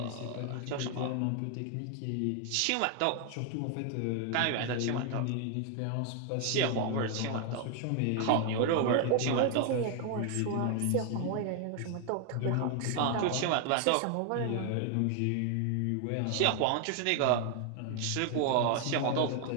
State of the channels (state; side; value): different; both; correlation 0.00